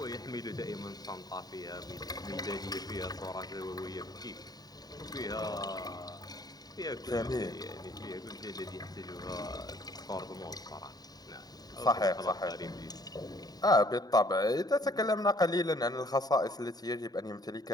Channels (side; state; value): right; late; 0.19 ms